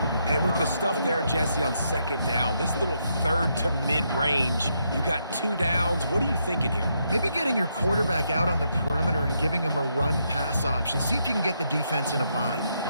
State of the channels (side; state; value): both; inverted; correlation -0.78